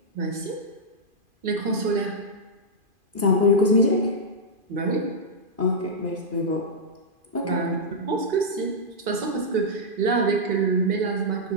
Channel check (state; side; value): late; left; 2.5 ms